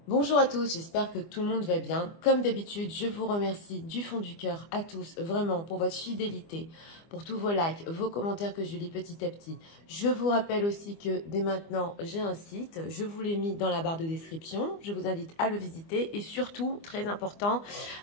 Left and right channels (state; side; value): late; right; 24 ms